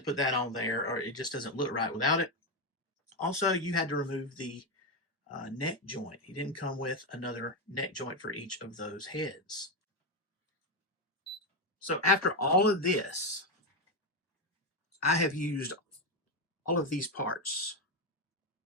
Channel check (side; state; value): both; normal; correlation 0.09